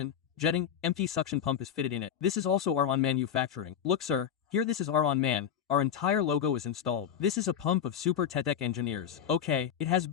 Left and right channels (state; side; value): quieter; right; 8.7 dB